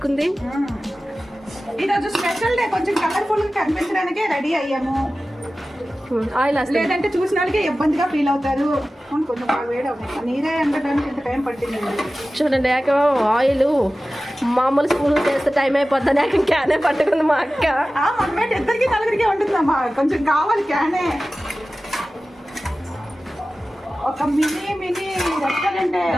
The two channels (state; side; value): normal; both; correlation 0.96